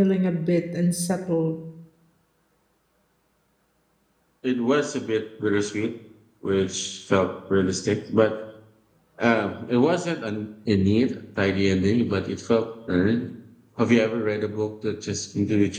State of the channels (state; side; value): identical; both; correlation 1.00